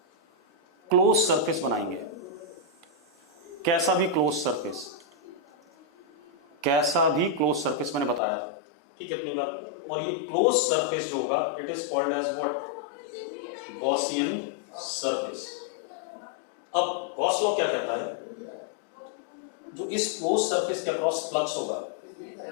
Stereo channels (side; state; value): right; drops out; at 8.2 s